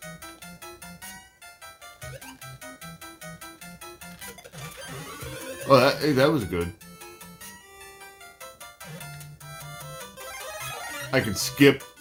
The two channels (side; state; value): both; identical; correlation 1.00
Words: Oh, that was good. I can skip